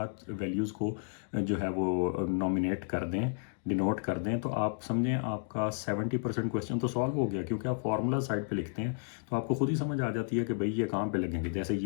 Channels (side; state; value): right; silent; digital silence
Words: वैल्यूज़ को जो है वो नॉमिनेट कर दें, डिनोट कर दें, तो आप समझें आपका 70% क्वेश्चन तो सॉल्व हो गया, क्योंकि आप फार्मूला साइड पे लिखते हैं तो आपको खुद ही समझ आ जाती है कि भाई ये कहाँ पे लगेंगे। जैसे